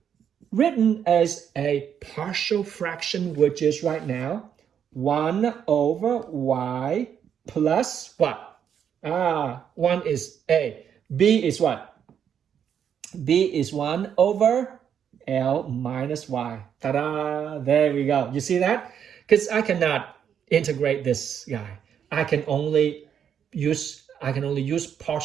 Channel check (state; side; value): quieter; left; 8.4 dB